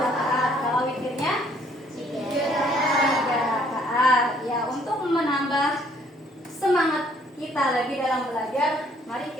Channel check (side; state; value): both; normal; correlation 0.63